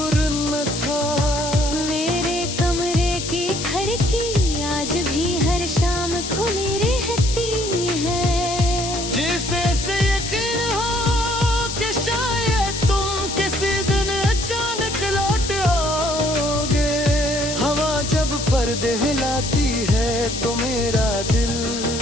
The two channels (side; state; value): left; noise; hiss, 6 dB below the sound